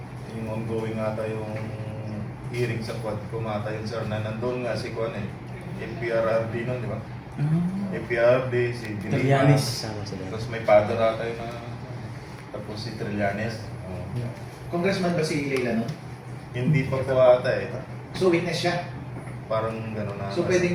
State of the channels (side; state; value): both; identical; correlation 1.00